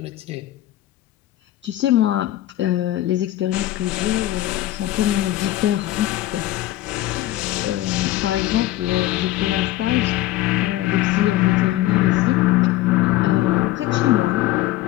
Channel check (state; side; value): quieter; right; 15.3 dB